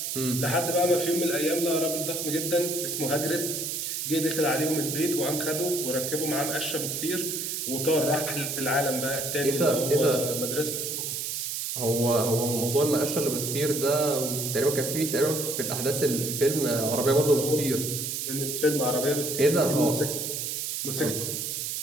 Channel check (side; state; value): right; noise; hiss, 3 dB below the sound